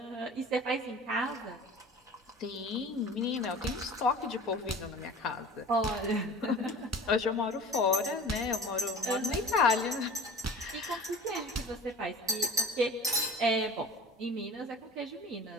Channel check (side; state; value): both; normal; correlation 0.41